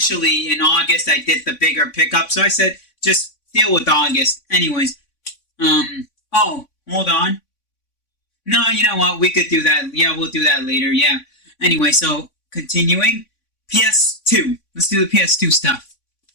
in August I did the bigger pickup, so I said just deal with August. Anyways, oh, hold on. No, you know what, we could do that. Yeah, we'll do that later, yeah. Anyway, so continuing, PS2. Let's do the PS2 stuff.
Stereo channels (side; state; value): right; late; 3.5 ms